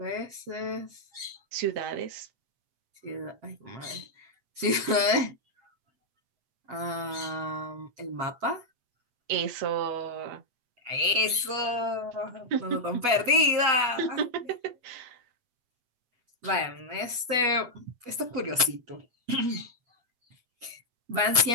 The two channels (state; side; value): late; left; 8.2 ms